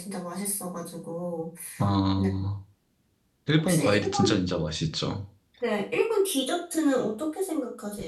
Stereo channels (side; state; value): both; identical; correlation 1.00